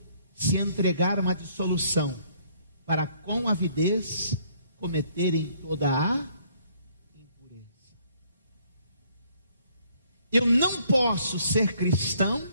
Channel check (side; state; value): both; inverted; correlation -0.63